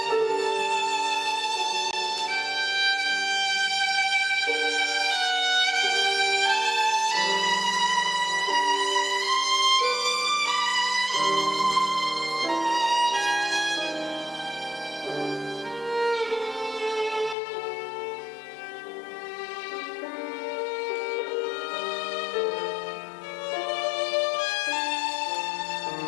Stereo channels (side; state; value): right; drops out; at 17.4 s